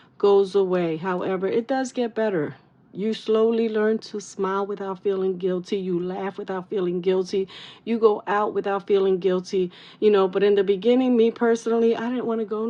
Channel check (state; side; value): identical; both; correlation 1.00